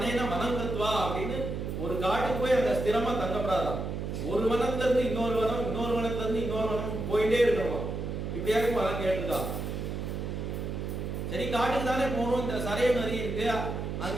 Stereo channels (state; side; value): noise; right; hum, 4 dB below the sound